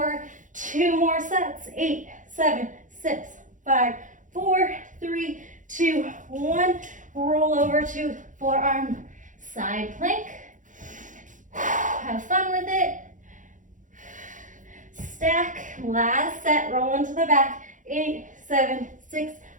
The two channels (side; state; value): left; late; 0.37 ms